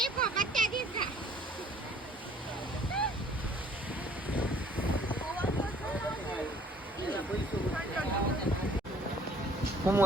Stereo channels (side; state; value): both; normal; correlation 0.56